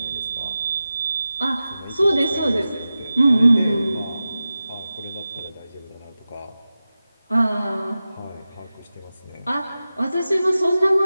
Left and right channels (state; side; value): inverted; both; correlation -0.94